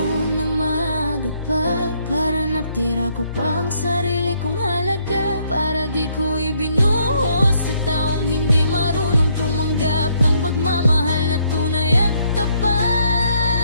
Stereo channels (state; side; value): inverted; both; correlation -0.70